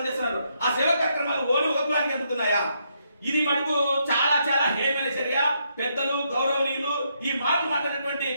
చేస్తున్నారు. ఆ సేవా కార్యక్రమాలు ఓన్లీ ఒక కులానికి అందుతున్నాయా? ఇది మటుకు చాలా చాలా హేమైన చర్య. పెద్దలు, గౌరవనీయులు ఈ మాటలు మాట్లాడినటువంటి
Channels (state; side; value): inverted; both; correlation -0.77